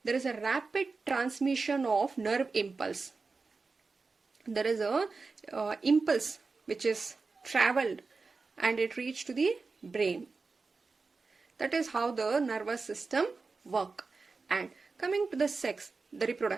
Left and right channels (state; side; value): quieter; left; 4.2 dB